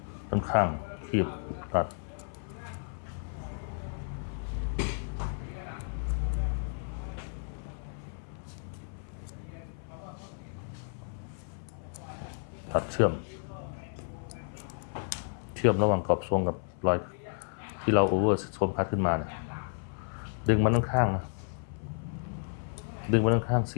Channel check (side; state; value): right; silent; 56 dB below the other